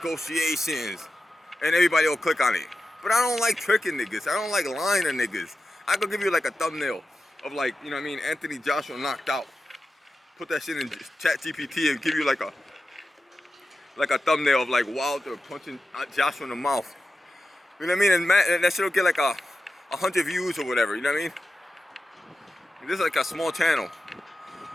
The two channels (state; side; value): normal; both; correlation 0.92